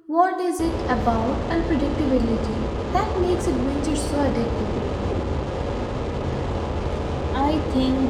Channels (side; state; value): both; identical; correlation 1.00